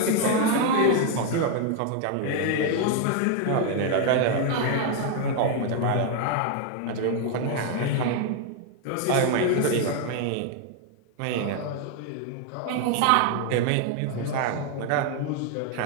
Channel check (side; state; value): both; different; correlation 0.01